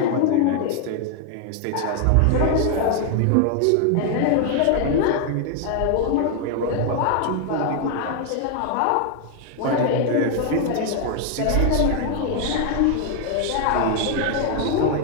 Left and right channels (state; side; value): different; both; correlation 0.00